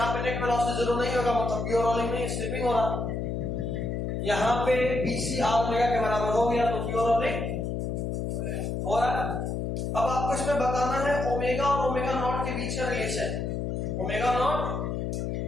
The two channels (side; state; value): left; noise; hum, 2 dB below the sound